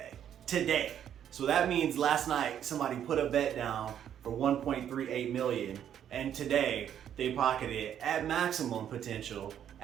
today. So that means last night somebody put a bet down for $1.38 million, and today they pocketed at maximum potential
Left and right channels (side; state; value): left; quieter; 9.7 dB